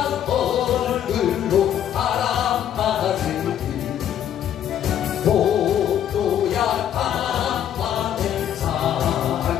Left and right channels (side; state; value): right; quieter; 10.2 dB